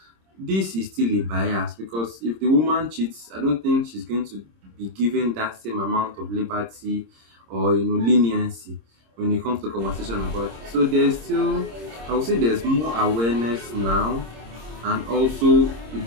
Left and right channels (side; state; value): left; late; 26 ms